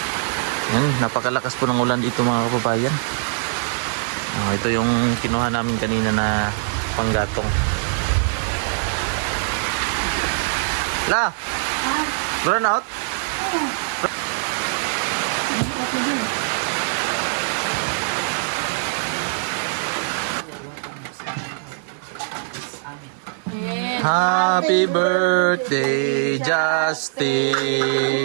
Yan, napakalakas po ng ulan dito mga kababayan. Ito yung kinuha namin kanina na panggatong. La! Brown out? Happy birthday, Justin!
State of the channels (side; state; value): left; silent; digital silence